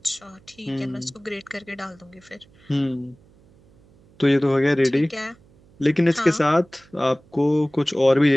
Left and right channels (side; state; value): right; noise; hum, 29 dB below the sound